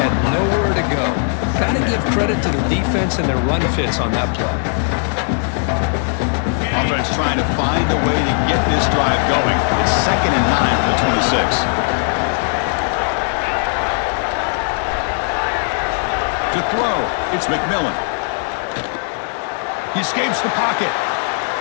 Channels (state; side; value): silent; right; 57 dB below the other